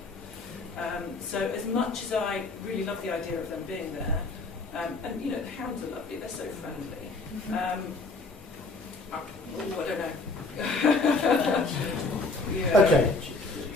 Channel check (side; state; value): right; quieter; 3.5 dB